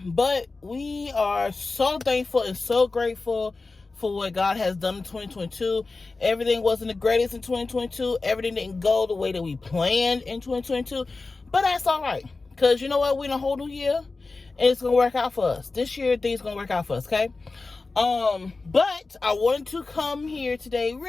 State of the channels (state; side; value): quieter; right; 3.7 dB